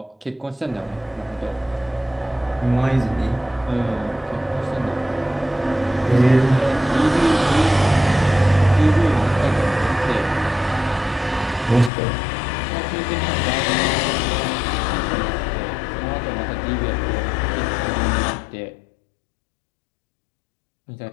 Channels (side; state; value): right; drops out; at 11.9 s